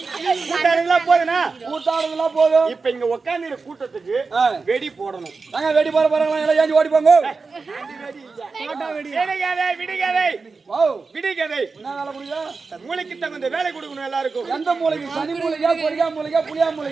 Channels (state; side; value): quieter; left; 4.4 dB